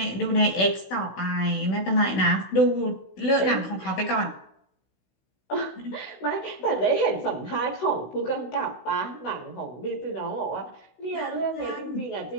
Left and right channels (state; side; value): late; right; 16 ms